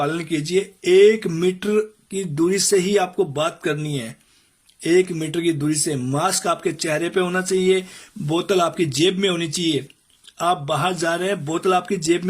कीजिए. 1 मीटर की दूरी से ही आपको बात करनी है, 1 मीटर की दूरी से. मास्क आपके चेहरे पे होना चाहिए, बोतल आपकी जेब में होनी चाहिए. आप बाहर जा रहे हैं, बोतल आपकी जेब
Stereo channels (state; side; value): identical; both; correlation 1.00